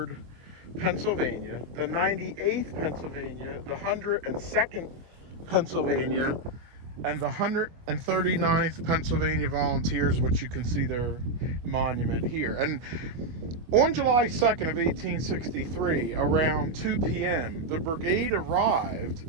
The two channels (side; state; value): left; late; 25 ms